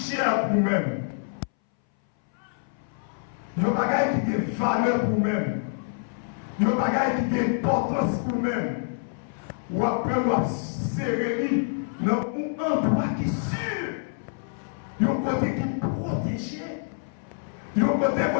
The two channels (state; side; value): silent; right; 60 dB below the other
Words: pour nous-mêmes. Il y a des bagailles qui ont valeur pour nous-mêmes. Il y a des bagailles qui ont importance pour nous-mêmes. Ou après, nous avons serré dans un endroit qui est sûr. Il y a un côté qui est protégé. Il y a un côté